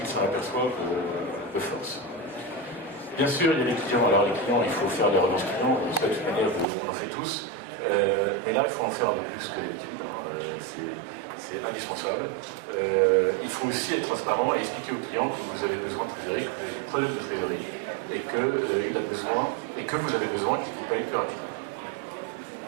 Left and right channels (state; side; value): drops out; left; at 6.7 s